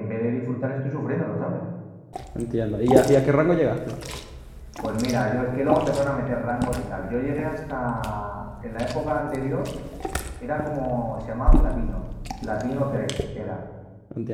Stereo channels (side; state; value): both; identical; correlation 1.00